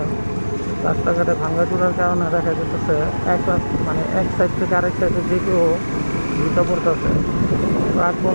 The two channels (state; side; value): inverted; both; correlation -1.00